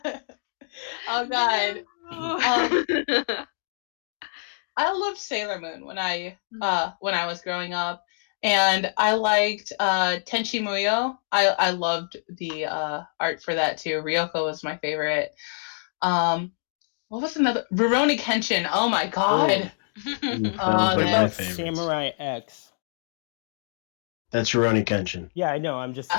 no! Oh god. Um, I loved Sailor Moon when I was growing up, and I liked Tenchi Muyo. I loved the art for that too. Ryoko was my favorite. Um, what was another? Rurouni Kenshin. Oh my Oh, god. Ooh, that was Oh what one of man. my about favorites. Samurai X? That's Rurouni Kenshin. Yeah, I know. I'm just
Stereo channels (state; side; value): silent; right; digital silence